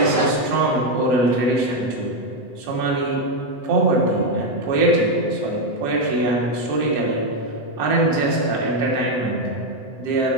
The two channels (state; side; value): late; right; 7.9 ms